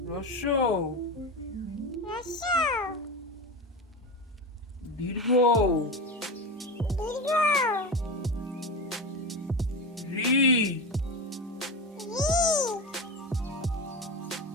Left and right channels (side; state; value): both; normal; correlation 0.23